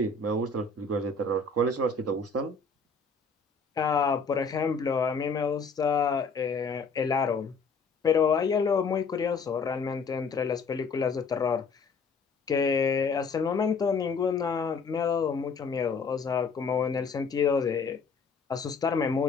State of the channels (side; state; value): right; quieter; 4.5 dB